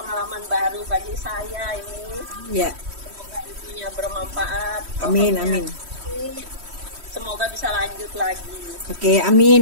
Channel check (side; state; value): left; late; 3.1 ms